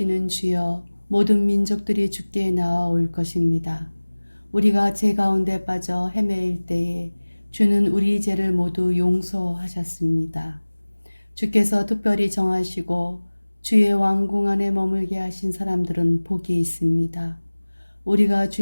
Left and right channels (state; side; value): inverted; both; correlation -1.00